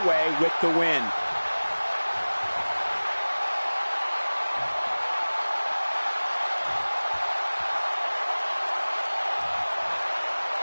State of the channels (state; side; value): inverted; both; correlation -1.00